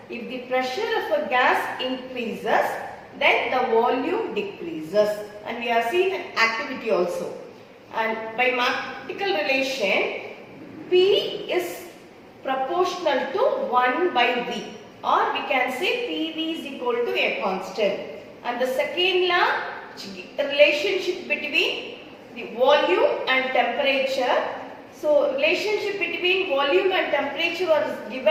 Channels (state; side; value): identical; both; correlation 1.00